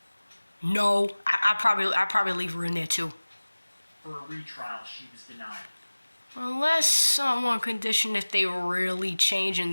No, I'd probably leave her in there too. for a retrial, she was denied. Unless someone conditioned if they really change and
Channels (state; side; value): inverted; both; correlation -1.00